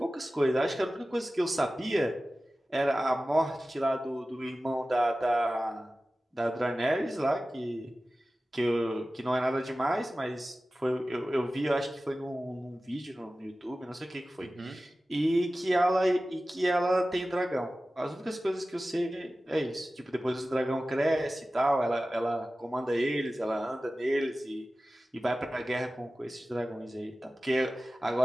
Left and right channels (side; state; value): both; normal; correlation 0.96